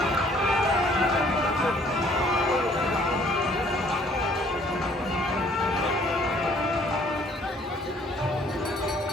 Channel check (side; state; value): both; normal; correlation 0.60